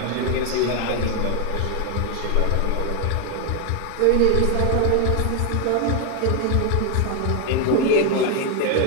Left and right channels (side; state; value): both; different; correlation 0.01